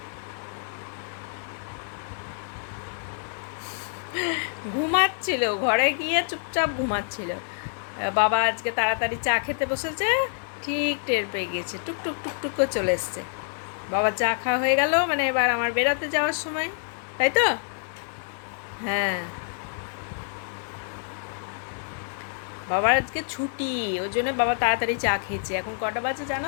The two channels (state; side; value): silent; right; 60 dB below the other